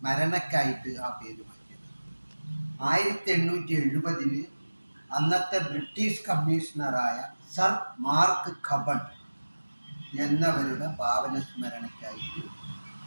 ആ പേര് മാറ്റിയത്. 1870 അന്നത്തെ ബ്രിട്ടീഷ് കമ്മീഷണറായ സർ മാർക്ക് കബൺ എന്നവരുടെ പാവന സ്മരണയ്ക്കായിട്ട്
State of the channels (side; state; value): both; inverted; correlation -1.00